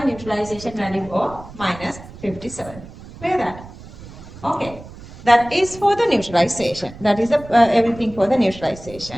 neutralization value of minus 57. Clear that? Okay. That is for the neutralization. That is everything for the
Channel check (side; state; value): right; noise; rumble, 17 dB below the sound